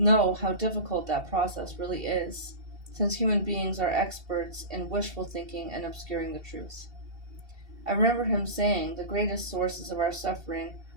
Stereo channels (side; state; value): left; late; 2.7 ms